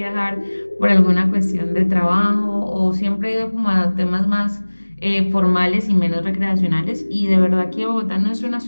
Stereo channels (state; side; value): inverted; both; correlation -1.00